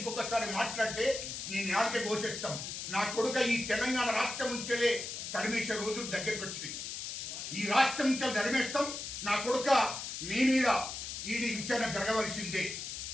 మాట్లాడితే నేను నాలుగే ఘోషిస్తాం. నా కొడుక ఈ తెలంగాణ రాష్ట్రం నుంచేలే తరిమేసే రోజులు దగ్గరికి వచ్చినాయి. ఈ రాష్ట్రం నుంచి తరిమేస్తాం. నా కొడుక మీ మీద ఈడీ విచారణ జరగవలసిందే,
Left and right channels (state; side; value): noise; left; hiss, 6 dB below the sound